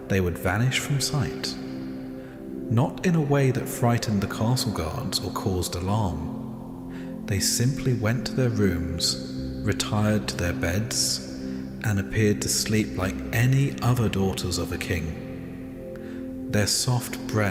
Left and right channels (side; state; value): both; identical; correlation 1.00